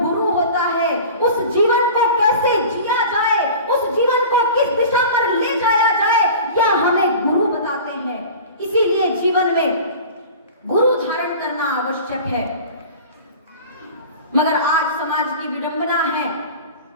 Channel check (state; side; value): inverted; both; correlation -0.38